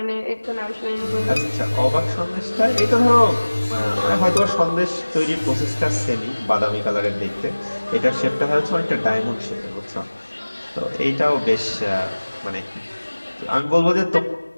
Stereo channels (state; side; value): inverted; both; correlation -1.00